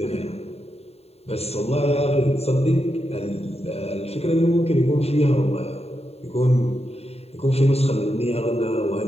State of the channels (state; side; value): late; right; 0.30 ms